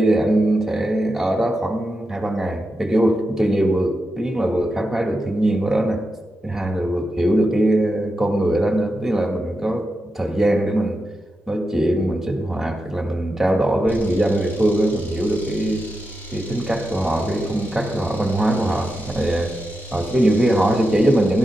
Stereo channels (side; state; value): both; normal; correlation 0.88